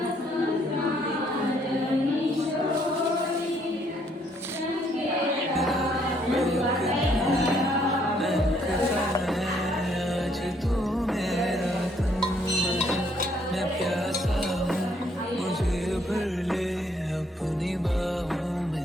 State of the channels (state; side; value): normal; both; correlation 0.68